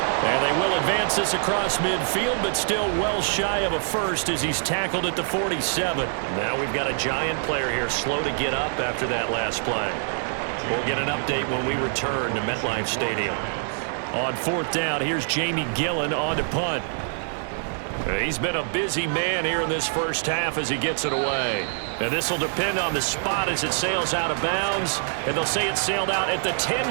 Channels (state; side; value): silent; left; 62 dB below the other